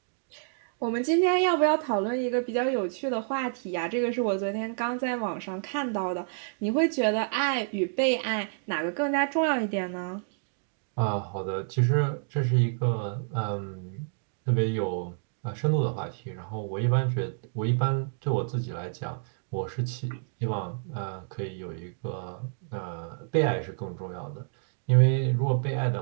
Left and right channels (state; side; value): silent; left; digital silence